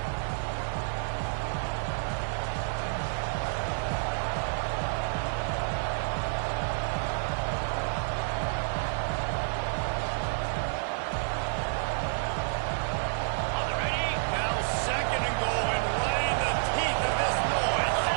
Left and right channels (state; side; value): silent; left; 58 dB below the other